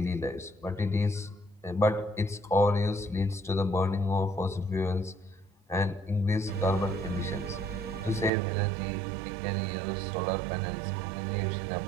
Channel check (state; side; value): drops out; left; at 8.3 s